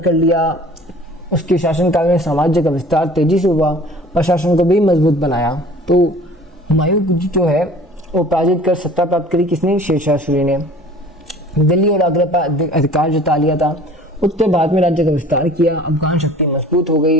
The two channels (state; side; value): normal; both; correlation 0.47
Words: लिया। उसके शासनकाल में साम्राज्य का विस्तार तेजी से हुआ, प्रशासन को भी मजबूत बनाया। तो हुमायूं जो है वो पराजित कर सत्ता प्राप्त करी। किसने? शेरशाह सूरी ने। दिल्ली और आगरा पर अधिकार जता लिया था। उत्तर भारत में राज्य का विस्तार किया, अफगान शक्ति मजबूत हो